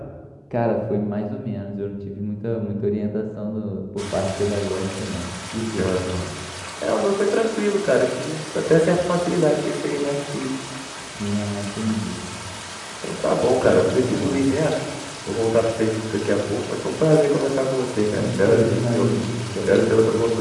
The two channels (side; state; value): both; identical; correlation 1.00